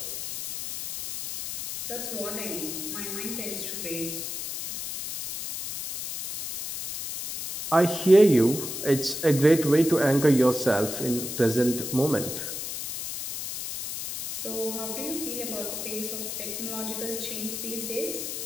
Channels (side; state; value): left; noise; hiss, 6 dB below the sound